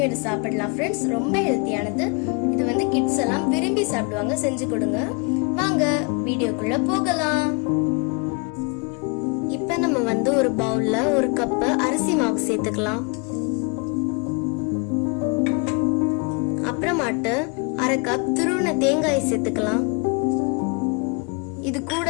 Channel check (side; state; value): right; quieter; 33.8 dB